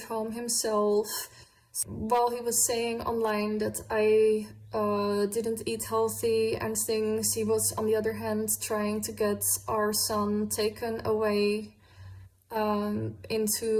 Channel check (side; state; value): both; identical; correlation 1.00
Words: Home himself, while he was saying online that I didn't eat healthy and things. He was, on the other hand, trying to get our son taken away